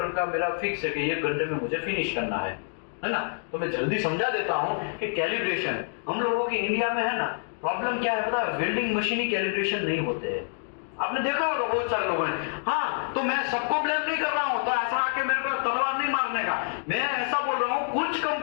का मेरा फिक्स है कि 1 घंटे में मुझे फिनिश करना है ना। तो मैं जल्दी समझा देता हूँ कि कैलिब्रेशन हम लोगों की इंडिया में है ना, प्रॉब्लम क्या है पता है, वेल्डिंग मशीन ही कैलिब्रेशन नहीं होते हैं। आपने देखा होगा बहुत सारे लोगों ने, हाँ तो मैं सबको ब्लेम नहीं कर रहा हूं, तो ऐसा आके मेरे को तलवार नहीं मारने का, मैं ऐसा बोल रहा हूं कुछ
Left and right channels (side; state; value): right; silent; digital silence